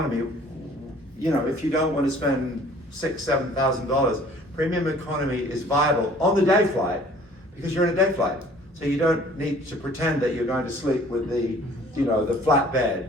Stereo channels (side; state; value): both; normal; correlation 0.53